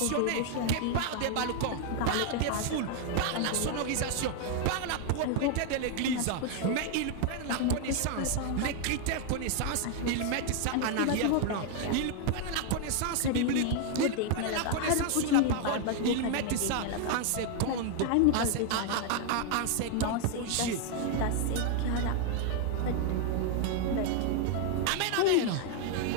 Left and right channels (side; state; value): both; different; correlation 0.00